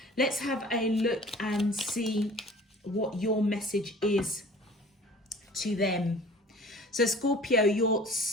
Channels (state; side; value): normal; both; correlation 0.46